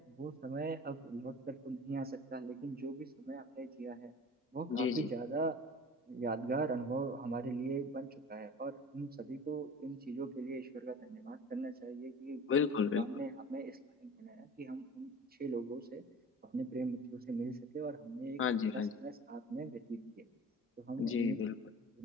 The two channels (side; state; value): both; normal; correlation 0.40